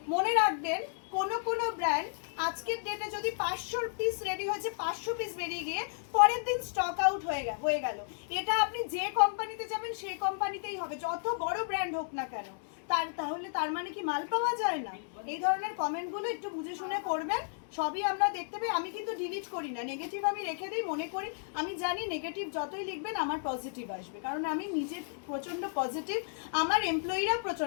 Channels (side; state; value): right; silent; 56 dB below the other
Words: মনে রাখবেন কোনো ব্র্যান্ড আজকের ডেটে যদি 500 পিস রেডি হয়েছে, 500 পিস বেরিয়ে গিয়ে পরের দিন স্টক আউট হয়ে গেল, এটা আপনি যে কোম্পানিতে যাবেন সেই কোম্পানিতেই হবে, যত বড় ব্র্যান্ড হোক না কেন। তাহলে তার মানে কি মাল পাওয়া যায় না? এই ধরনের কমেন্টগুলো একটু বুঝে শুনে করবেন, সবই আমরা দেখতে পাই। আমি কিন্তু ডিলিট করি না, নেগেটিভ আমি রেখে দিই, মনে করি আমি জানি নেগেটিভ যতই লিখবেন আমার পজিটিভ আসবে, কারণ আমি নিজে প্রচণ্ড পজিটিভ, আমার এমপ্লয়িরা